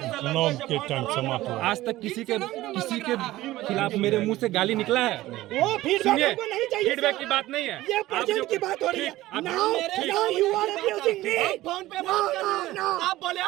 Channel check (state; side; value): quieter; left; 16.6 dB